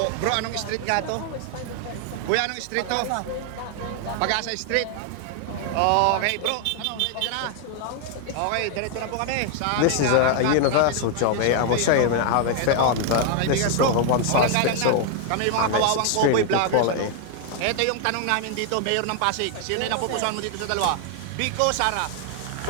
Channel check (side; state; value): both; different; correlation 0.00